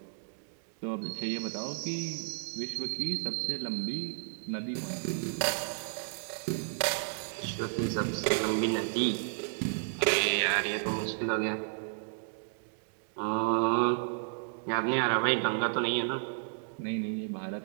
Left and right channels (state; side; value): silent; left; digital silence